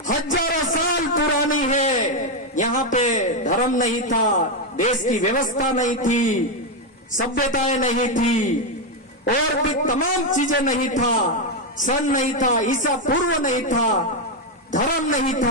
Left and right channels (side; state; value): both; normal; correlation 0.05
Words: हजारों साल पुरानी है। यहाँ पे धर्म नहीं था, देश की व्यवस्था नहीं थी, सभ्यताएं नहीं थी और भी तमाम चीजें नहीं था, सन नहीं था, ईसा पूर्व नहीं था, धर्म नहीं